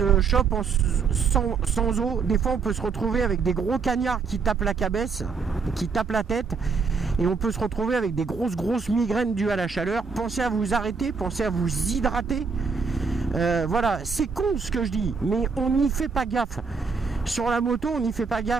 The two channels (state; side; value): quieter; left; 5.2 dB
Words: chope sans eau. Des fois on peut se retrouver avec des gros cagnards qui tapent la cabesse, qui tapent la tête. Et on peut se retrouver avec des grosses migraines dues à la chaleur. Pensez à vous arrêter, pensez à vous hydrater. Voilà, c'est con ce que je dis, mais on n'y fait pas gaffe. Sur la moto, on n'y fait pas